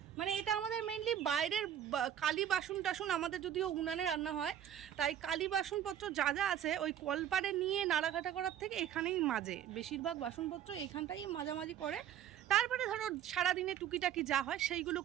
মানে এটা আমাদের মেইনলি বাইরের কালি বাসন টাসন, আমাদের যদিও উনানে রান্না হয়, তাই কালি বাসনপত্র যা যা আছে ওই কলপারে নিয়ে নাড়াঘাটা করার থেকে এখানেই মাজে। বেশিরভাগ বাসনপত্র এইখানটাই মাজামাজি করে, তারপরে ধরো সারাদিনে টুকিটাকি যা হয় সেইগুলো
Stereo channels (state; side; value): quieter; left; 10.3 dB